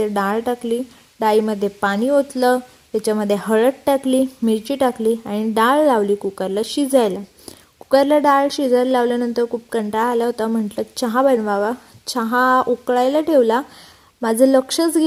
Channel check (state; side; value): identical; both; correlation 1.00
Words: डाळ टाकली, डाळीमध्ये पाणी ओतलं, त्याच्यामध्ये हळद टाकली, मिरची टाकली आणि डाळ लावली कुकरला शिजायला. कुकरला डाळ शिजायला लावल्यानंतर खूप कंटाळा आला होता. म्हटलं चहा बनवावा. चहा उकळायला ठेवला. माझं लक्षच